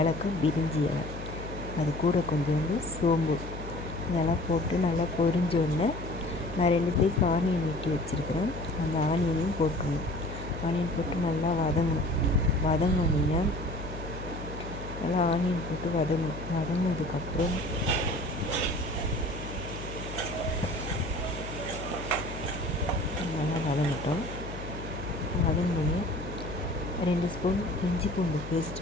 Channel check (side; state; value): left; noise; hum, 10 dB below the sound